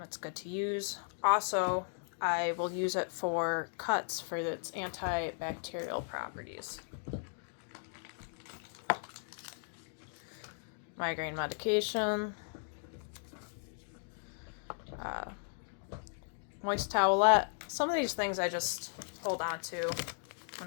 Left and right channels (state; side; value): silent; right; digital silence